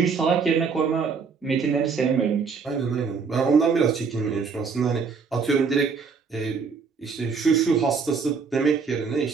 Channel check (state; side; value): quieter; left; 5.4 dB